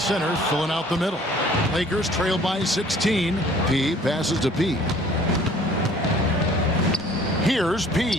filling out the middle. Lakers trail by 16. P passes to P. Here's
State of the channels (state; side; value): normal; both; correlation 0.53